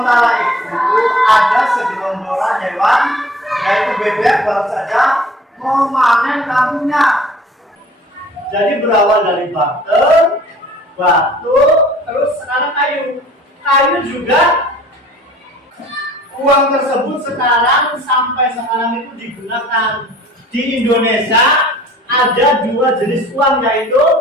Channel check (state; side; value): normal; both; correlation 0.51